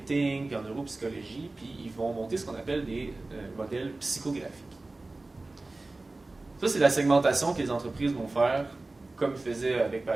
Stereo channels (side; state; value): left; quieter; 3.1 dB